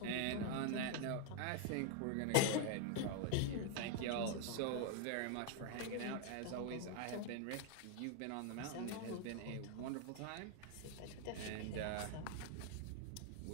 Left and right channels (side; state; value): both; different; correlation 0.00